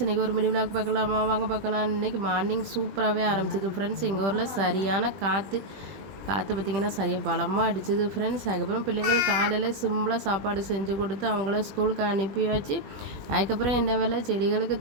இன்றைக்கி ஒரு மினி விலாக் பார்க்கலாமா? வாங்க பார்க்கலாம். இன்றைக்கி மார்னிங் சூப்பராகவே ஆரம்பிச்சிது ஃப்ரெண்ட்ஸ். எங்கள் ஊரில் சரியான காற்று பார்த்திங்கன்னா சரியாக பலமாக அடிச்சுது ஃப்ரெண்ட்ஸ். அதுக்கப்புறம் பிள்ளைங்களுக்கு காலையில் சிம்பிளாக சாப்பாடு செஞ்சு கொடுத்து அவங்கள ஸ்கூலுக்கு அனுப்பியாச்சு. அதுக்கப்புறம் என்ன வேலை, செடிகளுக்கு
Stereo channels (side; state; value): left; late; 20 ms